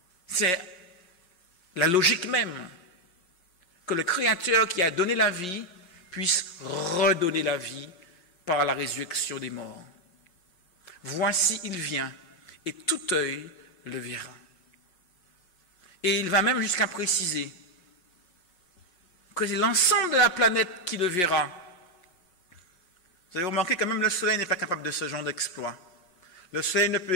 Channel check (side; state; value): right; late; 5.6 ms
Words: C'est la logique même que le Créateur qui a donné la vie puisse redonner la vie par la résurrection des morts. Voici, il vient, et tout œil le verra. Et il va même jusqu'à préciser que c'est l'ensemble de la planète qui le verra. Vous avez remarqué que même le soleil n'est pas capable de ce genre d'exploit. Le soleil ne peut